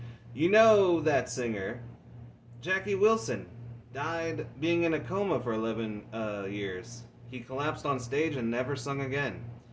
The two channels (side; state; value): both; identical; correlation 1.00